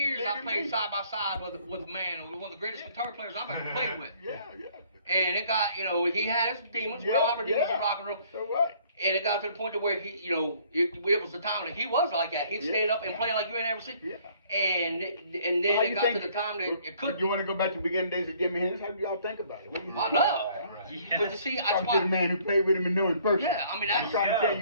I played side by side with a man, one of the greatest guitar players I've ever played with. Yeah. And it got, he had his demons. We all have our demons in rock and roll. So what? And it got to the point to where he, it was the time that he was like that. He'd stayed up and play like you ain't ever seen. Yeah. And then it got to the time that it couldn't. You want to go back to the beginning days of Jimi Hendrix? How do y'all think about it? What do you think? I know. But you see, that's Talk to the why. man who played with him and know him personally. Yeah, I mean, I'm that's. trying to tell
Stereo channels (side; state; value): both; inverted; correlation -0.59